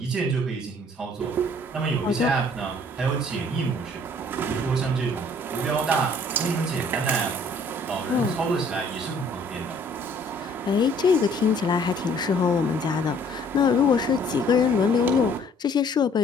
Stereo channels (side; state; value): both; normal; correlation 0.58